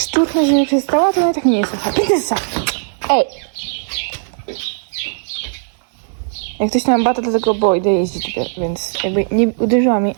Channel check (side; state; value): left; silent; 65 dB below the other